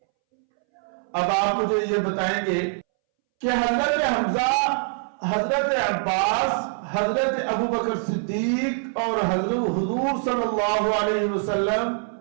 اب آپ مجھے یہ بتائیں گے کہ حضرت حمزہ، حضرت عباس، حضرت ابو بکر صدیق اور حضرت حضور صلی اللہ علیہ وسلم،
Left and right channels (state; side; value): silent; left; 63 dB below the other